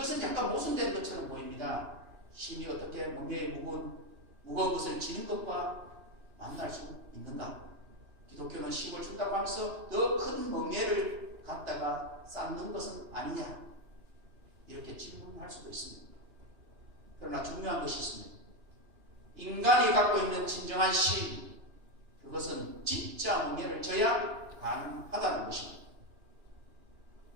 약간 모순된 것처럼 보입니다. 쉼이 어떻게 멍에의 무거운 것을 지는 것과 만날 수 있는가? 기독교는 쉼을 준다고 하면서 더 큰 멍에를 갖다가 쌓는 것은 아니냐? 이렇게 질문할 수도 있습니다. 그러나 중요한 것이 있습니다. 인간이 갖고 있는 진정한 쉼, 그것은 진짜 멍에를 져야 가능하다는 것입니다.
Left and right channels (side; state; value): left; late; 2.9 ms